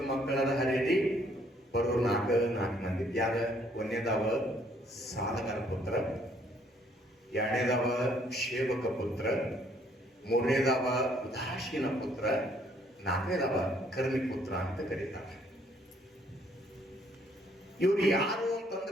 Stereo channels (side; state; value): both; normal; correlation 0.65